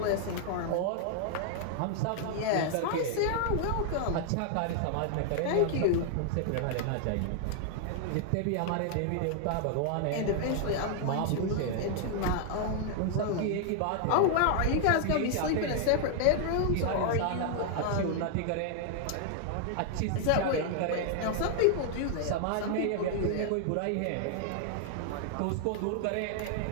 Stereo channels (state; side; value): different; both; correlation 0.00